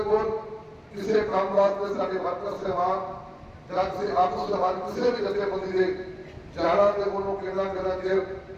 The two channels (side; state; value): both; identical; correlation 1.00